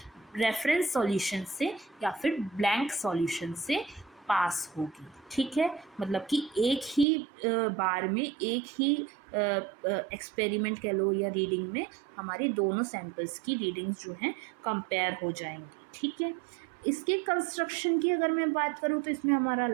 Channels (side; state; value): left; drops out; at 7.1 s